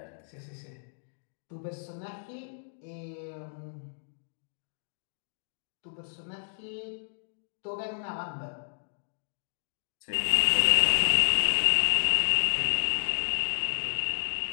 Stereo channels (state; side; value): silent; right; digital silence